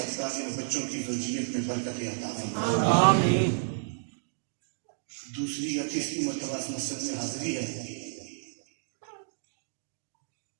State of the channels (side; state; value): left; silent; digital silence